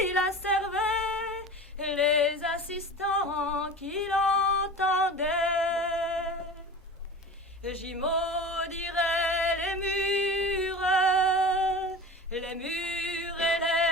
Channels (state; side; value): normal; both; correlation 0.34